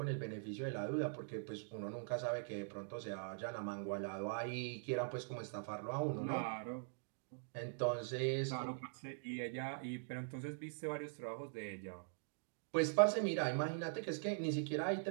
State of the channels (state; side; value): silent; left; digital silence